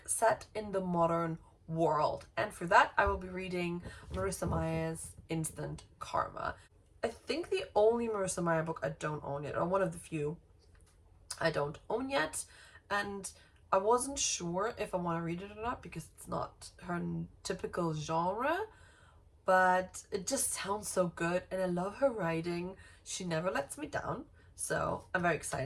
set in the modern world. And for that, I will be reading Marissa Meyer's Instant Karma. I think the only Marissa Meyer book I don't own yet, or one of the few I don't own yet, and I wasn't sure if I want to read it or not because it's not her typical genre, but it just sounds so good and I love her writing. She never lets me down, so I'm very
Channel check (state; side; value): identical; both; correlation 1.00